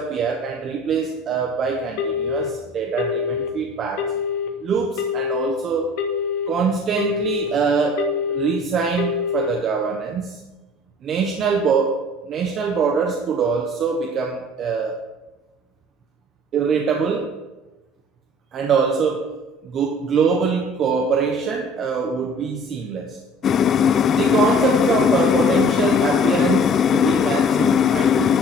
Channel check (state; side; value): normal; both; correlation 0.48